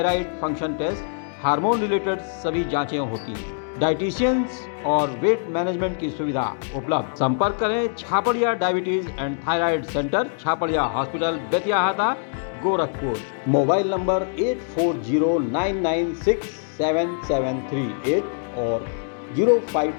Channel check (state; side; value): silent; right; digital silence